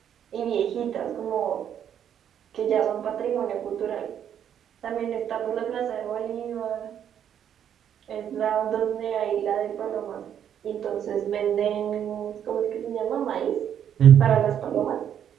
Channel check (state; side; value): quieter; left; 9.3 dB